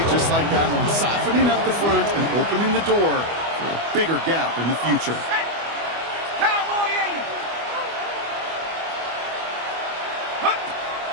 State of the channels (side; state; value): left; late; 25 ms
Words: just like that one, softening up the front and opening the door for a bigger gap in the future.